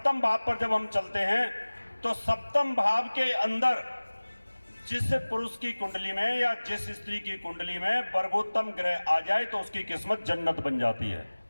भाव पर जब हम चलते हैं तो सप्तम भाव के अंदर जिस पुरुष की कुंडली में या जिस स्त्री की कुंडली में वर्गोत्तम ग्रह आ जाए तो उसकी किस्मत जन्नत बन जाती है।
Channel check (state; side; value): inverted; both; correlation -1.00